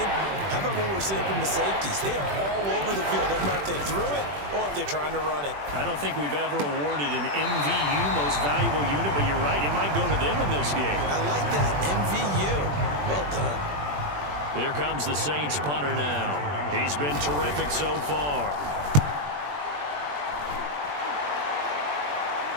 how about what we're seeing from the safeties? They are all over the field, no matter if they threw it or if they're trying to run it. I don't think we've ever awarded an MVU, most valuable unit, but you're right, it might go to them in this game. I like that, MVU. Well done. Here comes the Saints punter now. He's been terrific so far.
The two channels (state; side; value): late; left; 21 ms